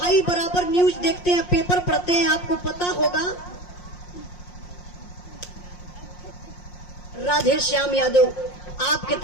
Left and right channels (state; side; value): late; right; 5.6 ms